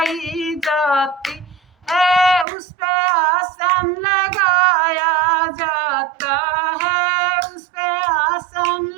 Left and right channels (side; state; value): left; drops out; at 2.5 s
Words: जाती है, उस पे आसन लगाया जाता है, उस पे आसन